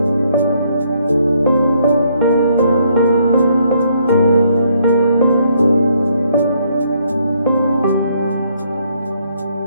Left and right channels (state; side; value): inverted; both; correlation -0.70